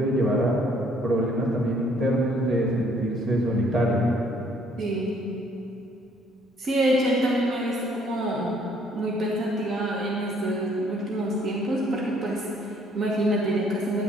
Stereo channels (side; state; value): both; normal; correlation 0.63